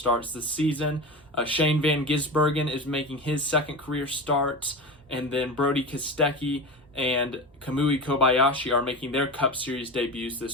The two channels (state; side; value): normal; both; correlation 0.26